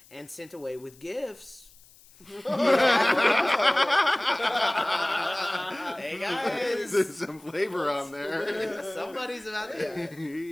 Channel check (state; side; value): noise; left; hiss, 26 dB below the sound